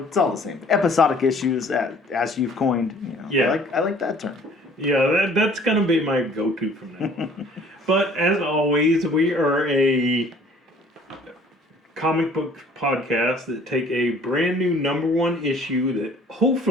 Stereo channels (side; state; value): both; normal; correlation 0.54